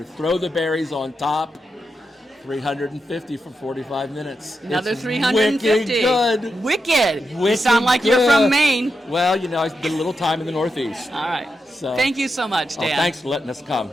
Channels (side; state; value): both; normal; correlation 0.87